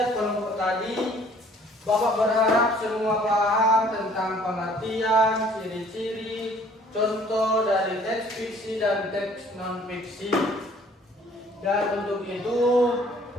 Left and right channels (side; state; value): both; normal; correlation 0.57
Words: kelompok tadi, Bapak berharap semua paham tentang pengertian, ciri-ciri, contoh dari teks fiksi dan teks non fiksi. Dan untuk itu